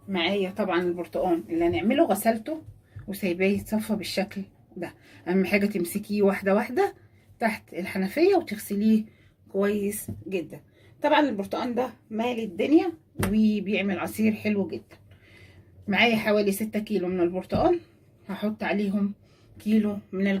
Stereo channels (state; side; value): identical; both; correlation 1.00